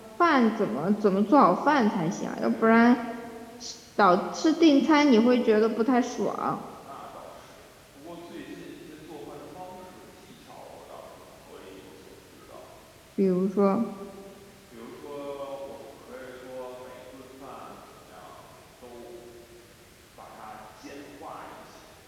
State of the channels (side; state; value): both; identical; correlation 1.00